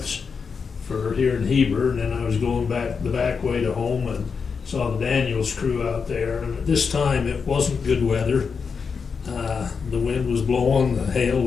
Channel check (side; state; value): right; quieter; 5.6 dB